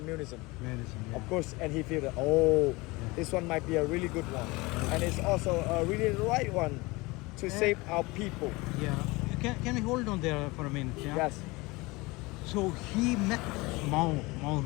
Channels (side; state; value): right; quieter; 23.3 dB